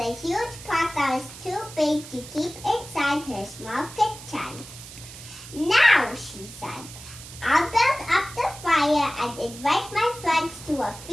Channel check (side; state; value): right; noise; hiss, 15 dB below the sound